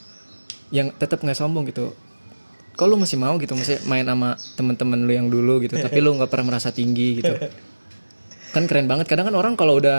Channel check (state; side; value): inverted; both; correlation -1.00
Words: yang tetap nggak sombong gitu. Kok lu masih mau gitu, masih main sama teman-teman lu yang dulu gitu, tapi lu nggak pernah merasa tinggi gitu. Kan keren banget. Kadang kan orang kalau